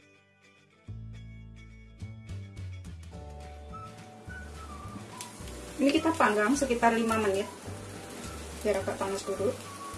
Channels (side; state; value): both; identical; correlation 1.00